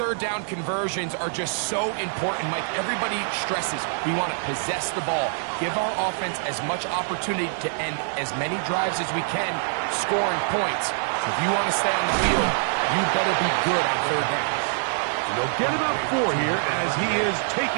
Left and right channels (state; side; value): silent; left; digital silence